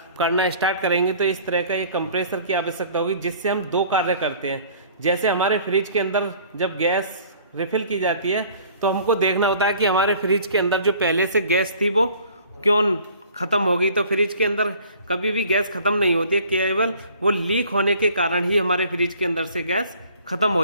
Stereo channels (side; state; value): both; inverted; correlation -0.51